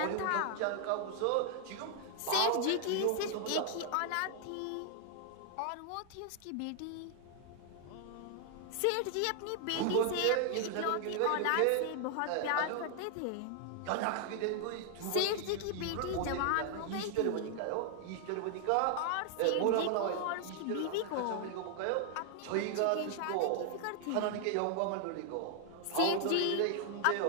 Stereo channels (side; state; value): both; different; correlation 0.00